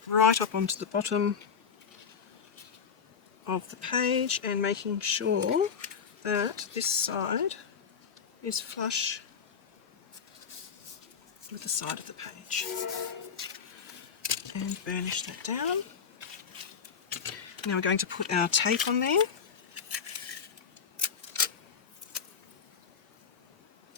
Right up onto the bottom of the page, and making sure that this side is flush with the side of the page. And burnish that down. Now we're going to put our tape on there,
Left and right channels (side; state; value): right; quieter; 6.6 dB